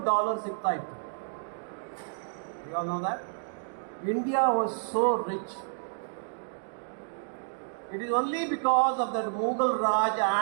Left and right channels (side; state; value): left; silent; digital silence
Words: ಸಿಗ್ತಾ ಇತ್ತು. You all know that? India was so rich. It is only because of that Mughal Raj